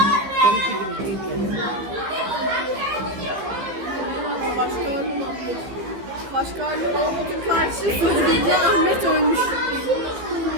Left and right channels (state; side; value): late; left; 15 ms